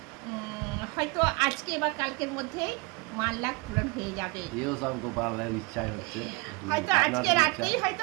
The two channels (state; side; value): quieter; left; 27.3 dB